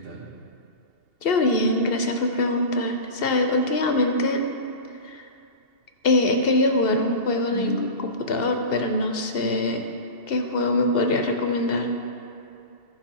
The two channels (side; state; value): right; late; 2.7 ms